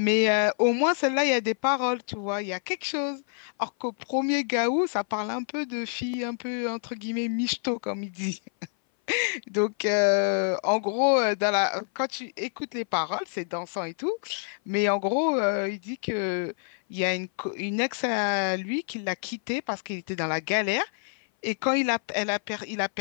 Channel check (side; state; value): right; silent; 58 dB below the other